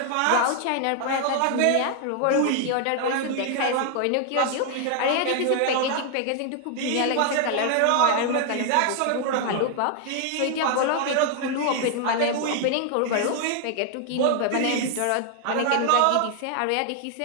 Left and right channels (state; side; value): different; both; correlation 0.00